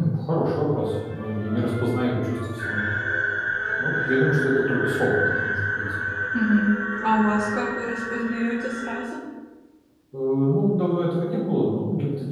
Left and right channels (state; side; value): identical; both; correlation 1.00